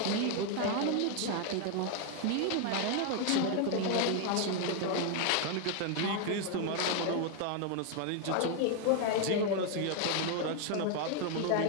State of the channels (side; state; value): both; different; correlation 0.01